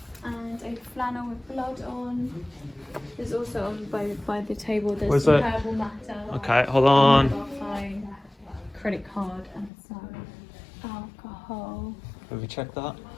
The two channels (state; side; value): drops out; right; at 9.7 s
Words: and a flannel with blood on. There's also on by the table. There's Where's some that? herbal matter. Okay, hold on. Mobile phone, credit card, and some alcohol. Have we checked that?